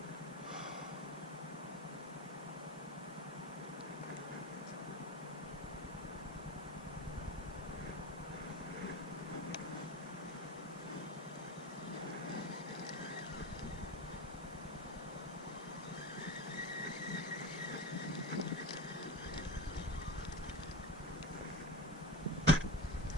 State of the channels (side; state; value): both; normal; correlation 0.26